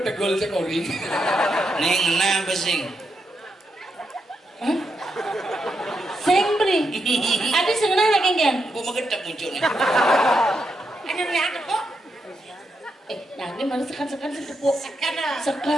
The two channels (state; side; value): normal; both; correlation 0.83